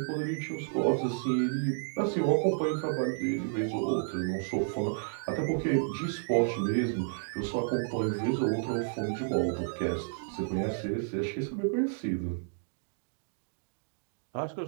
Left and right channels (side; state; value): left; silent; digital silence